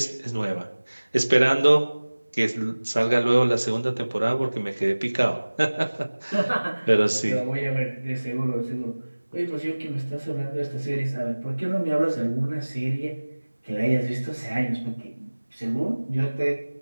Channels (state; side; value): inverted; both; correlation -1.00